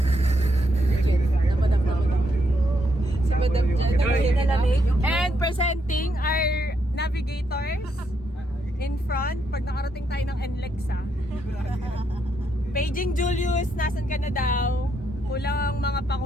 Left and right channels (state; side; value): normal; both; correlation 0.77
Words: Si Madam Jan, nalamig. And presenting our navigators in front pag nakarating tayo ng NLEX. Paging Julius, nasan ka na daw? Kulang ang mga